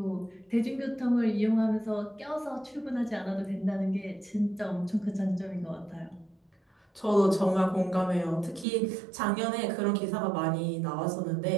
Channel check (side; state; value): left; drops out; at 8.7 s